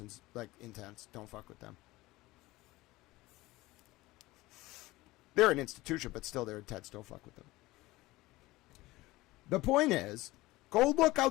like, intense. Don't fuck with them. They're an institution, but still they're intense. Don't fuck with them. The point is, go look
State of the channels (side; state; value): right; quieter; 19.3 dB